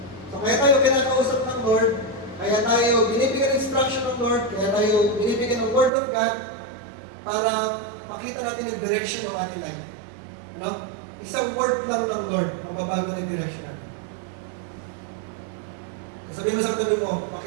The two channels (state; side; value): drops out; left; at 5.9 s